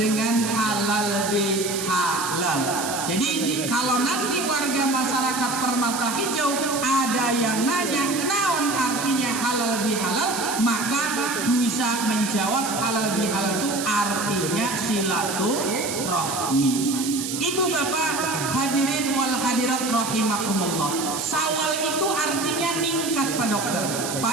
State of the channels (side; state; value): right; noise; hiss, 5 dB below the sound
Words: halal bihalal. Jadi kalau nanti warga masyarakat Permata Hijau ada yang nanya naon artinya halal bihalal, maka bisa menjawab halal bihalal itu artinya silaturahmi. Ibu bapak hadirin wal hadirat rahimakumullah. Syawal itu artinya ningkat Pak Dokter,